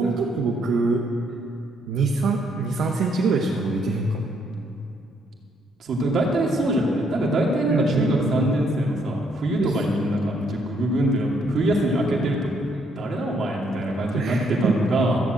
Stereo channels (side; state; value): both; normal; correlation 0.71